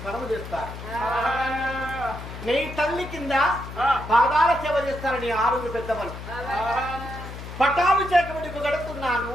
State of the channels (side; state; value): left; noise; hum, 11 dB below the sound